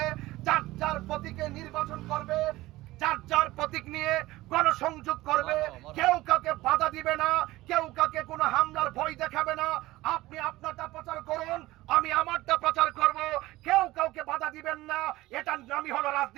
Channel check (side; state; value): left; quieter; 18.0 dB